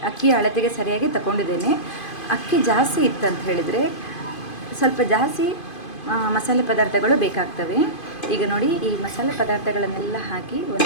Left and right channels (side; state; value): right; late; 2.5 ms